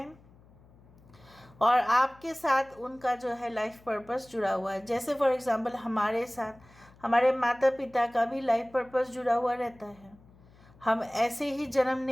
और आपके साथ उनका जो है लाइफ पर्पस जुड़ा हुआ है। जैसे फॉर एग्जांपल हमारे साथ हमारे माता पिता का भी लाइफ पर्पस जुड़ा हुआ रहता है। हम ऐसे ही जन्म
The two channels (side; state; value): left; noise; hum, 26 dB below the sound